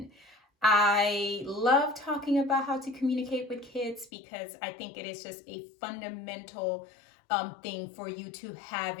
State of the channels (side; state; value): right; drops out; at 4.1 s